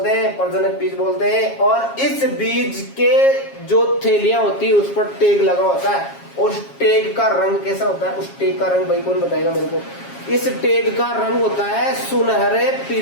हैं? प्रजनक बीज बोलते हैं। और इस बीज के जो थैलियां होती है उस पर टैग लगा होता है। उस टैग का रंग कैसा होता है? उस टैग का रंग भाई कौन बताएगा मेरे को? इस टैग का रंग होता है सुनहरे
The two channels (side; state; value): right; late; 7.3 ms